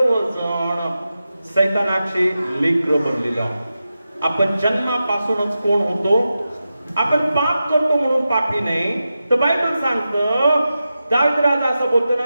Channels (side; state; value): both; inverted; correlation -0.92